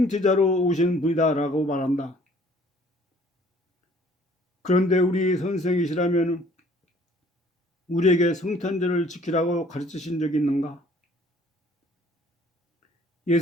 오신 분이다라고 말한다. 그런데 우리 선생이시라면 우리에게 성탄절을 지키라고 가르치신 적이 있는가?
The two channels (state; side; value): normal; both; correlation 0.57